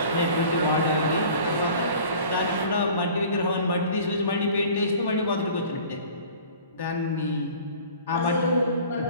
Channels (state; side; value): inverted; both; correlation -0.46